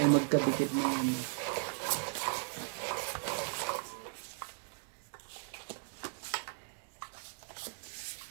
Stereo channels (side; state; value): left; silent; digital silence